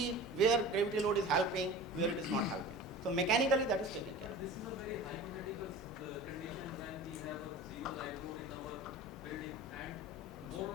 where gravity load is helping, where it is not helping. So mechanically that is taken care of. This is a very hypothetical condition when we have a zero live load in our building, and more or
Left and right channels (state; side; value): normal; both; correlation 0.37